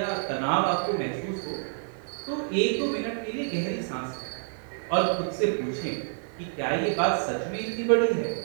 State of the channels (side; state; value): left; silent; digital silence